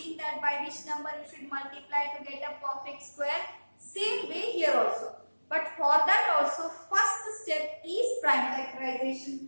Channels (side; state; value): both; inverted; correlation -1.00